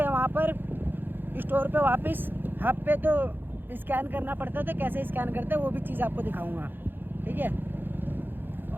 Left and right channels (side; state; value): left; late; 0.097 ms